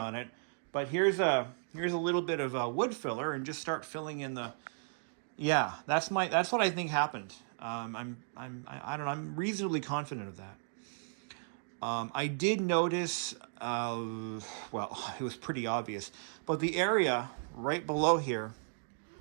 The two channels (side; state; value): left; silent; digital silence